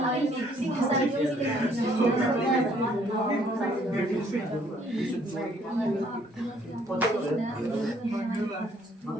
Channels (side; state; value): both; normal; correlation 0.64